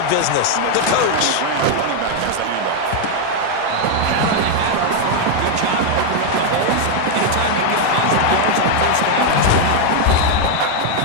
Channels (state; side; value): different; both; correlation 0.01